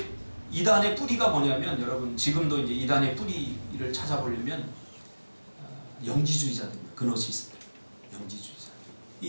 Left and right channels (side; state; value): both; inverted; correlation -1.00